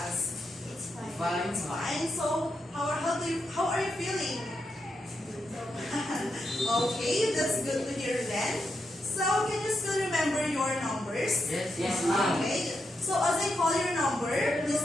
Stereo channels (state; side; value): normal; both; correlation 0.84